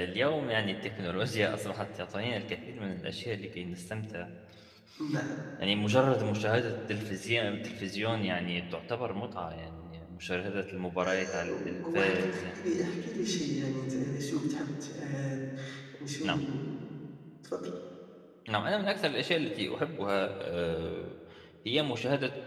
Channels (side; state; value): both; identical; correlation 1.00